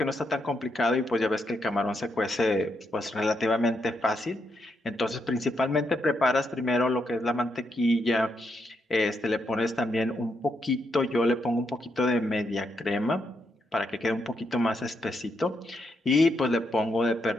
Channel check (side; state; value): both; normal; correlation 0.80